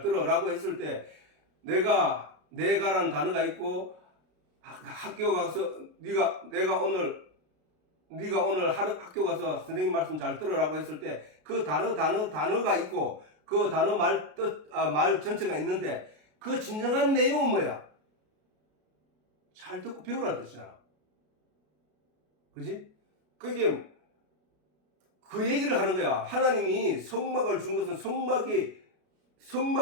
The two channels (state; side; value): late; left; 33 ms